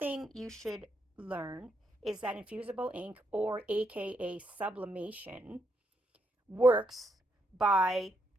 you should learn is that infusible ink, or aka sublimation, works by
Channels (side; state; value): both; normal; correlation 0.78